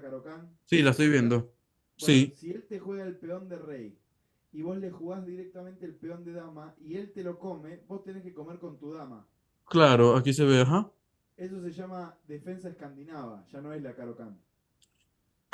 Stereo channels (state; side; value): identical; both; correlation 1.00